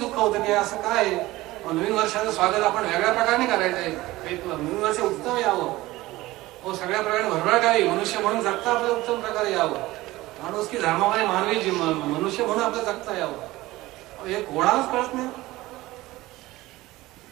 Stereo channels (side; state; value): left; quieter; 18.4 dB